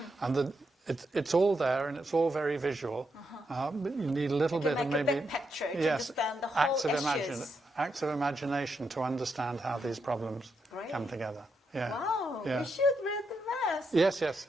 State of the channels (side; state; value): both; normal; correlation 0.82